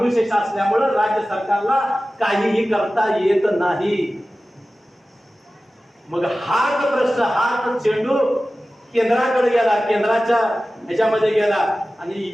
असल्यामुळे राज्य सरकारला काहीही करता येत नाही. मग हाच प्रश्न, हाच चेंडू केंद्राकडे गेला, केंद्राच्या ह्याच्यामध्ये गेला,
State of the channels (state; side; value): normal; both; correlation 0.96